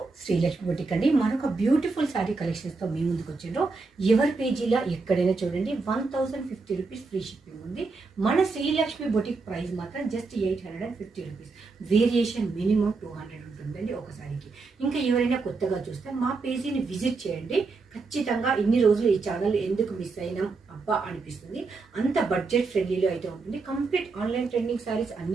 Srilakshmi boutique అండి. మనొక beautiful sari కలెక్షన్స్తో మీ ముందుకు వచ్చిండ్రు. ఎవరి పేజీలో ఎక్కడైనా చూడండి 1050 రూపీస్ ఫ్రీ షిప్పింగ్ ఉంది. మన శ్రీలక్ష్మి బొటిక్ ప్రైస్ మాత్రం జస్ట్ 850 రూపీస్. వేరియేషన్ మినిమం 200 ఉంటుందండి ఒక శారీకి. ఇంకా ఎవరైనా కొత్తగా చూస్తే మా పేజీని విజిట్ చేయండి. ఖచ్చితంగా ఇన్ని రోజులు ఈ ఛానల్ ఎందుకు మిస్ అయినాం అబ్బా అనిపిస్తుంది. అంత బడ్జెట్ ఫ్రెండ్లీలో అయితే ఉంటుంది. కంప్లీట్ ఆన్లైన్ ట్రెండింగ్ శారీస్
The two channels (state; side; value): quieter; left; 4.1 dB